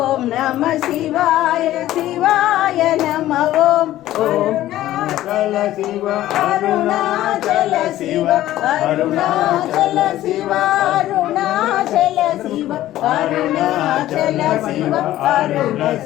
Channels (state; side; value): quieter; right; 14.2 dB